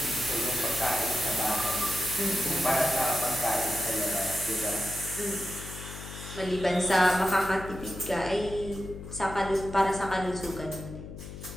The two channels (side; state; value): left; noise; hum, 11 dB below the sound